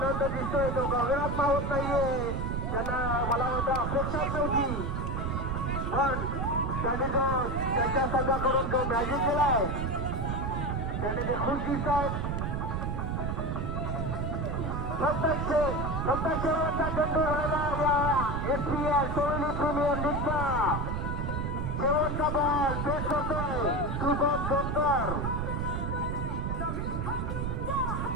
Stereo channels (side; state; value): right; noise; rumble, 1 dB below the sound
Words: दिसतोय तो गगनात होत नाहीये. त्यांना मला वाटतं अपेक्षाच नव्हती पण त्यांनी जो त्यांच्या संघाकडून जो मॅजिक केलाय त्यांनी ते खुश दिसत आहेत. फक्त शेवटचा चेंडू राहिला SPL सोळी प्रीमियर लीगचा शेवटचा बॉल पेश करतोय शुभम जोकर.